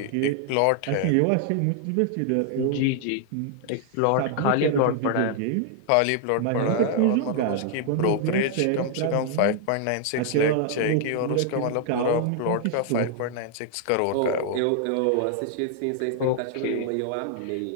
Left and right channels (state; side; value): different; both; correlation 0.00